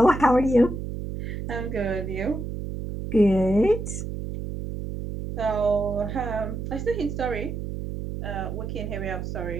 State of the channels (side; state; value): right; noise; hum, 6 dB below the sound